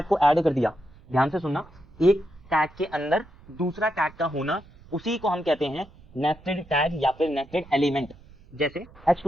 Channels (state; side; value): noise; right; rumble, 24 dB below the sound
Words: को ऐड कर दिया, ध्यान से सुनना, एक टैग के अंदर दूसरा टैग का होना, उसी को हम कहते हैं नेस्टेड टैग या फिर नेस्टेड एलिमेंट। जैसे